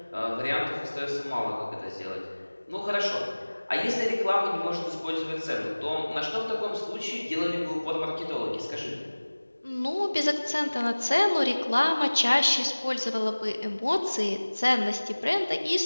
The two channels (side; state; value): both; inverted; correlation -1.00